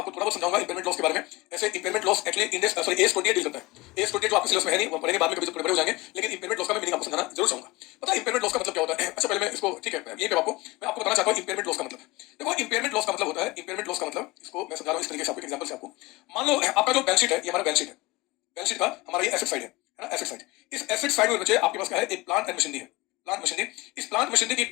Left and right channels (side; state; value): right; quieter; 21.9 dB